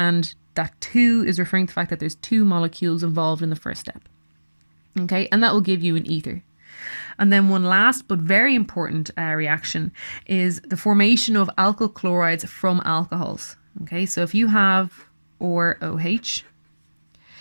that 2 is referring to the fact that there's 2 molecules involved in the first step. Okay, and that will give you an ether. And then one last but very important reaction is the formation of alkyl chlorides from alcohols. Okay, so if you have OH,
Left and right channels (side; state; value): both; inverted; correlation -1.00